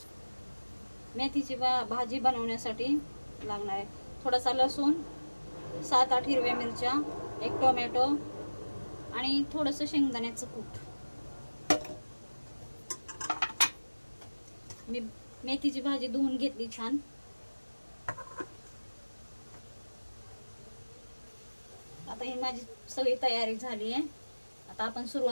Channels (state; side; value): inverted; both; correlation -1.00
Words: मेथीची भाजी बनवण्यासाठी लागणार आहे थोडासा लसूण, 7-8 हिरव्या मिरच्या, 1 टोमॅटो आणि थोडंसं शेंगदाण्याचं कूट। मी मेथीची भाजी धुवून घेतली छान। आता ही माझी सगळी तयारी झाली आहे। आता आपण